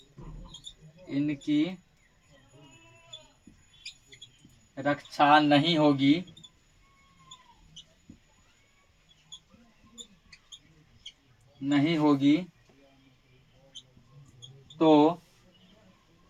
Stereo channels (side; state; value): both; identical; correlation 1.00